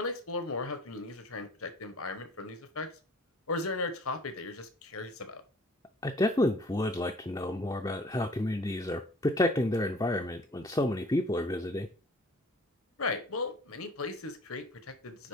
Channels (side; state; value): both; normal; correlation 0.51